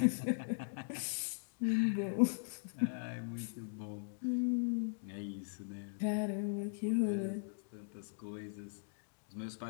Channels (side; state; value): right; silent; digital silence